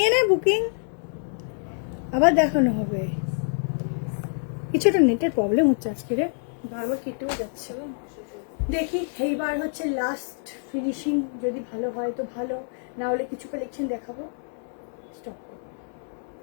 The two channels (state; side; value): silent; right; 61 dB below the other